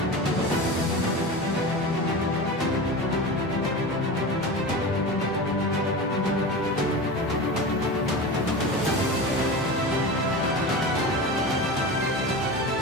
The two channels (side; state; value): both; normal; correlation 0.28